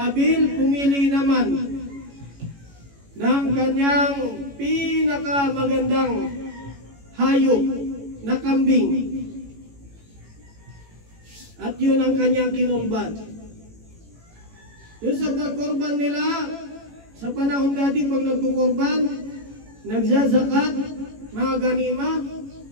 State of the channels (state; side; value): late; left; 18 ms